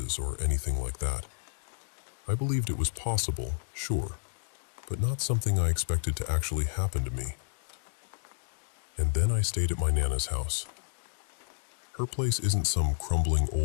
or anything like that. I believed it was possible, sure, but not something I expected to actually happen to me. And then I stayed at my Nana's house. Her place isn't some crumbling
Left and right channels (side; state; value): right; silent; digital silence